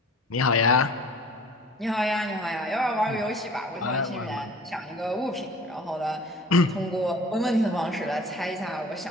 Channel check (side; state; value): both; normal; correlation 0.45